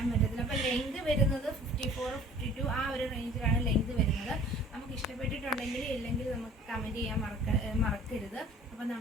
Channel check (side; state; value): both; normal; correlation 0.49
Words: പറ്റത്തില്ല. അപ്പോൾ ലെങ്ത് വരുന്നത് 54-52 ആ ഒരു റേഞ്ചിലാണ് ലെങ്ത് വരുന്നത്. നമുക്ക് ഇഷ്ടപ്പെട്ടിട്ടുണ്ടെങ്കിൽ ഇല്ലെങ്കിൽ നമുക്ക് കമൻറ്റ് ചെയ്യാൻ മറക്കരുത്. അപ്പോൾ